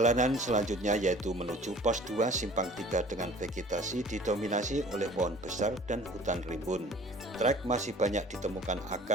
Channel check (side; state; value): both; normal; correlation 0.48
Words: selanjutnya yaitu menuju pos 2 Simpang 3 dengan vegetasi didominasi oleh pohon besar dan hutan rimbun. Trek masih banyak ditemukan